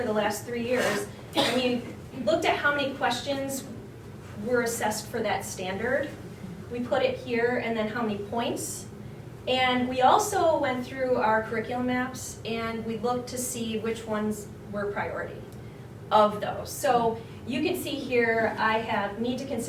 the last 3 years, and we looked at how many questions were assessed for that standard. We put it here, and then how many points. And we also went through our curriculum maps, and we looked to see which ones were priority of those. So you can see here, I have need to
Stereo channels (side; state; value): both; identical; correlation 1.00